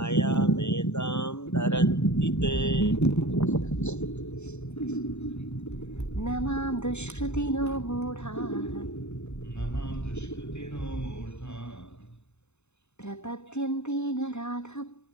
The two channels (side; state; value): right; late; 0.82 ms